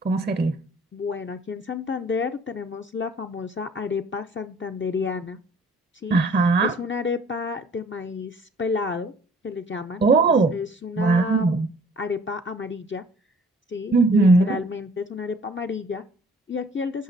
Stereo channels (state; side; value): normal; both; correlation 0.54